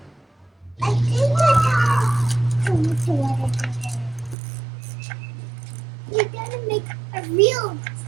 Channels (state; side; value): drops out; left; at 4.4 s